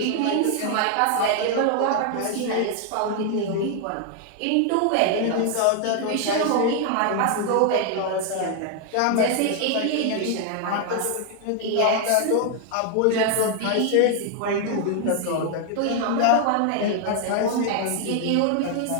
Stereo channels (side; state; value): both; different; correlation 0.00